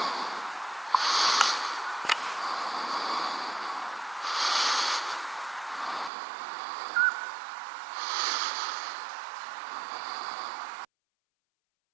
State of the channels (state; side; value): drops out; left; at 6.1 s